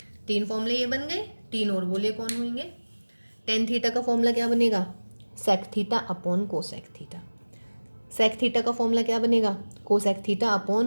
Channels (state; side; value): inverted; both; correlation -1.00